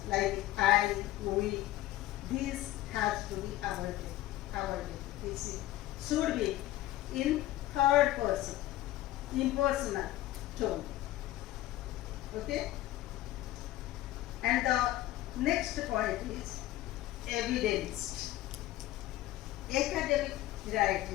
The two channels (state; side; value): quieter; right; 15.4 dB